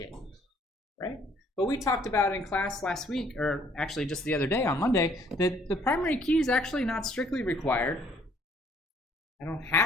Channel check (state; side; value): normal; both; correlation 0.62